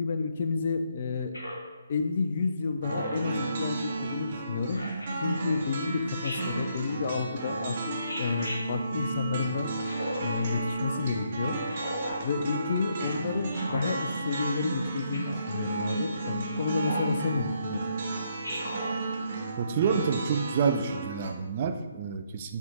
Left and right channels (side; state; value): both; inverted; correlation -0.72